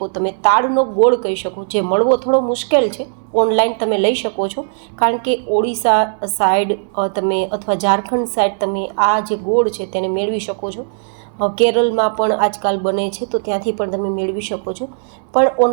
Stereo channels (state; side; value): silent; left; digital silence